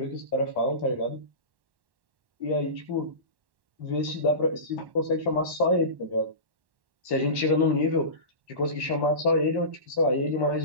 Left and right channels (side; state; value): left; late; 1.1 ms